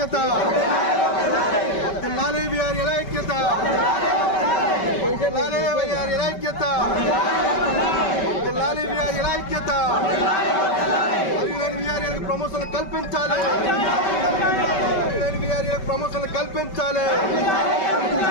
వర్ధిల్లాలి వీఆర్ఎల్ ఐక్యత. వర్ధిల్లాలి వీఆర్ఎల్ ఐక్యత. వర్ధిల్లాలి వీఆర్ఎల్ ఐక్యత. అర్హులైన వీఆర్ఎల్కు ప్రమోషన్లు కల్పించాలి. అర్హులైన వీఆర్ఎల్కు ప్రమోషన్లు కల్పించాలి.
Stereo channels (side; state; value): right; late; 5.2 ms